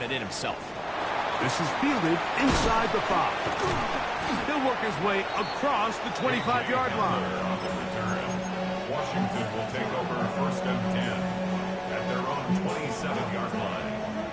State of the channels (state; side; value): identical; both; correlation 1.00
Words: it in himself. This is fielded inside the 5. He'll work his way across the 25-yard line. Washington will take over first and 10 at their own 27-yard line.